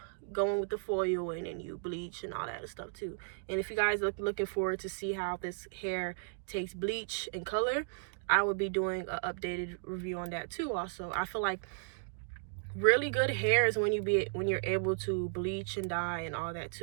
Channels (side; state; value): left; silent; digital silence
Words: go in with the foil and then you bleach and all that stuff too. And if you guys are looking forward to see how this hair takes bleach and color, I will be doing an updated review on that too also. I feel like really good hair is when you're able to bleach and dye and all that